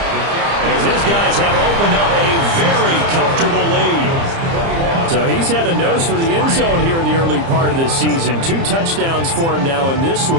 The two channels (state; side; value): late; left; 30 ms